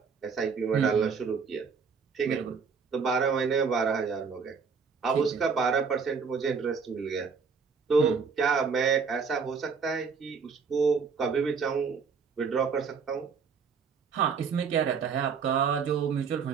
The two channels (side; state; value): left; quieter; 5.7 dB